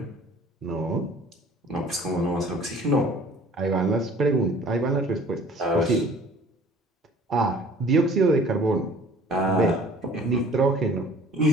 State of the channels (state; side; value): normal; both; correlation 0.51